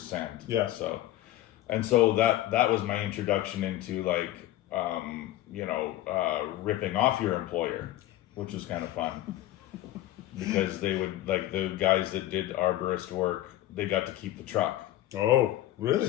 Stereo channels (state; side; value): quieter; right; 14.6 dB